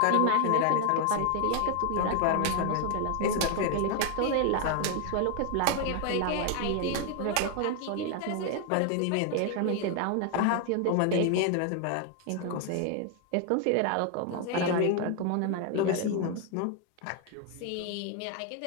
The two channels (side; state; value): both; different; correlation 0.00